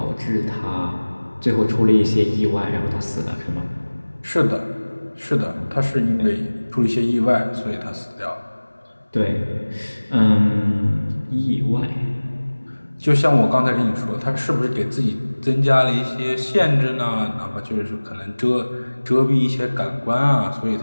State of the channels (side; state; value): both; inverted; correlation -1.00